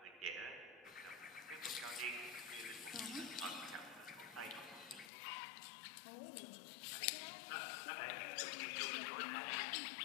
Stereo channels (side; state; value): right; drops out; at 5.1 s